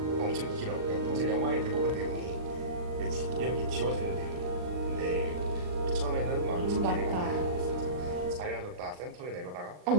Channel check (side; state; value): left; late; 39 ms